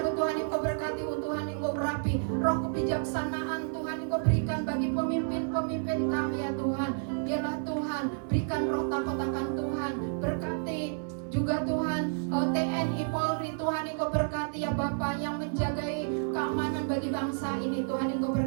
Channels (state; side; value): silent; left; 58 dB below the other